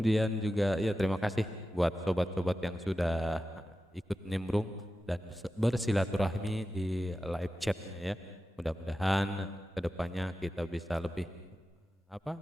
juga ya terima kasih buat sobat-sobat yang sudah ikut nimbrung dan bersilaturahmi di live chatnya ya. Mudah-mudahan kedepannya kita bisa lebih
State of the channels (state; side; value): normal; both; correlation 0.93